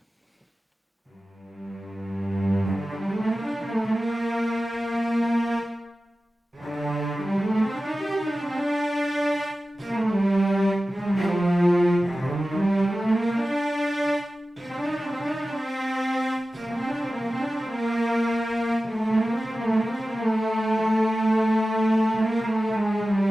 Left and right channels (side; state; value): both; normal; correlation 0.95